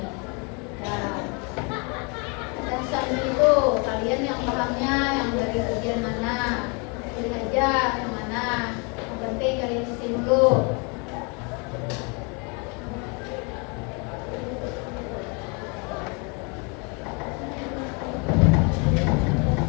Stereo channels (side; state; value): right; quieter; 33.0 dB